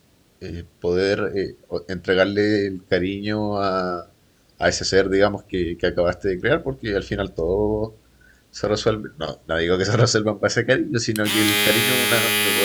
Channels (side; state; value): both; identical; correlation 1.00